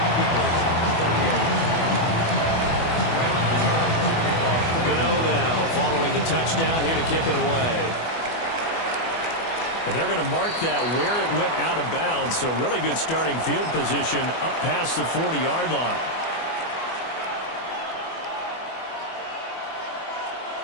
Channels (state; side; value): late; right; 24 ms